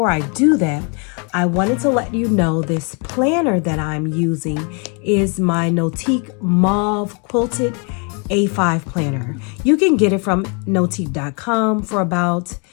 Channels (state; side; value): quieter; right; 35.5 dB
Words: I do that, I wanted to let you know this planner that I'm using is my NOTIQ Mauve Quilted A5 planner. You can get it from notiq.com for about